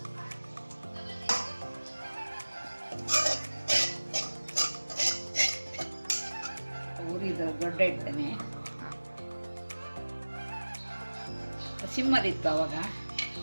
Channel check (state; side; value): inverted; both; correlation -1.00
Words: ಊರಿದ ದೊಡ್ಡ ಇಡ್ತೇನೆ. ಸಿಮ್ಮಲ್ಲಿತ್ತು ಅವಾಗ.